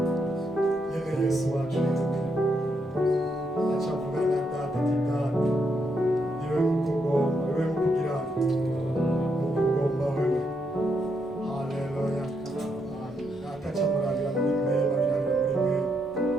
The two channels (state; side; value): normal; both; correlation 0.79